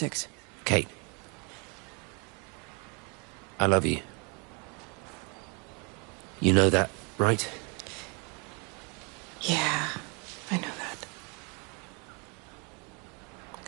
Kate. I love you. You know that, right? Yeah, I know that.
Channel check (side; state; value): left; quieter; 33.0 dB